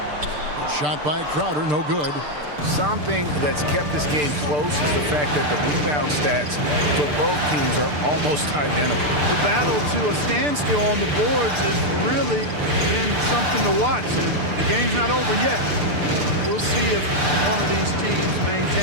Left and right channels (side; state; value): left; late; 6.8 ms